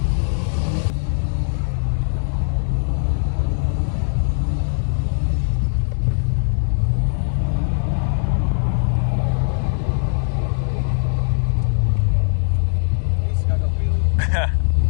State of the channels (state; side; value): silent; right; digital silence